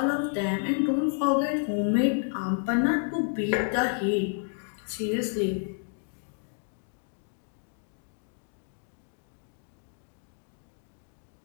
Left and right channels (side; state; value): right; silent; 58 dB below the other